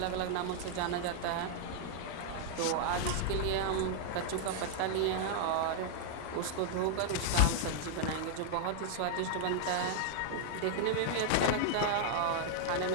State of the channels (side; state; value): both; different; correlation 0.00